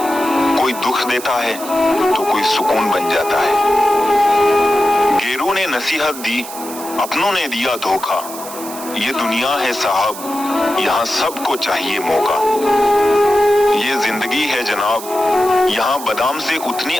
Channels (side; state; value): right; noise; hiss, 12 dB below the sound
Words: कोई दुख देता है तो कोई सुकून बन जाता है। गैरों ने नसीहत दी, अपनों ने दिया धोखा। ये दुनिया है साहब, यहाँ सबको चाहिए मौका। ये जिंदगी है जनाब, यहाँ बादाम से उतनी